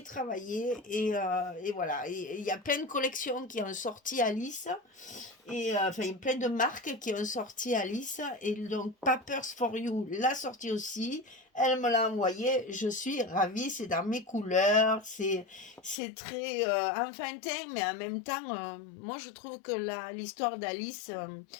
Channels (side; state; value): right; drops out; at 16.0 s